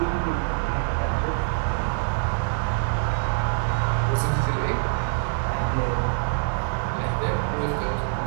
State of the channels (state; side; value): silent; left; digital silence